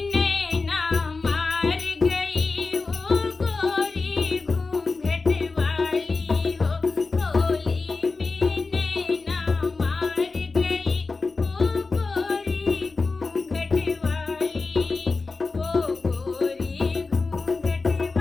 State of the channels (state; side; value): quieter; right; 4.0 dB